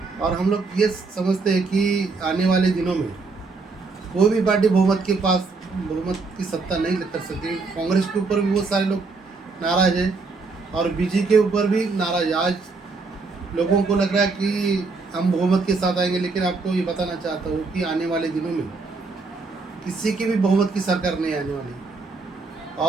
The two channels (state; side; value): quieter; left; 4.1 dB